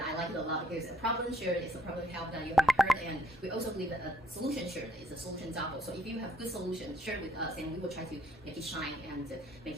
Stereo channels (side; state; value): both; normal; correlation 0.67